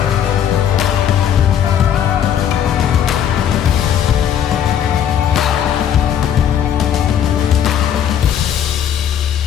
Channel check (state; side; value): quieter; right; 9.3 dB